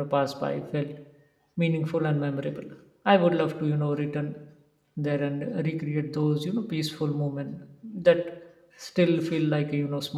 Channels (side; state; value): both; identical; correlation 1.00